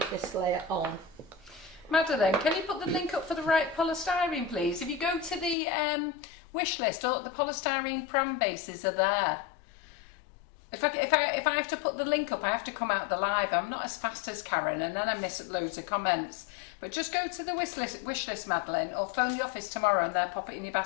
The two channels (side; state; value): right; drops out; at 5.6 s